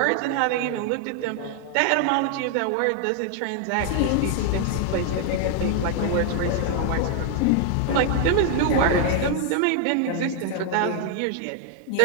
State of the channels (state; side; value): different; both; correlation 0.00